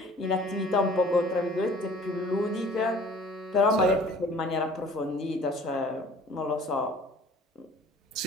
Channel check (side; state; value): both; normal; correlation 0.49